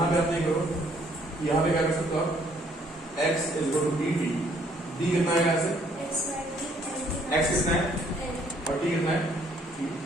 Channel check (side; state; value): both; normal; correlation 0.64